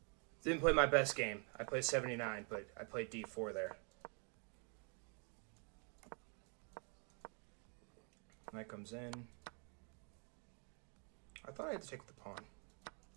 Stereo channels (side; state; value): left; quieter; 37.1 dB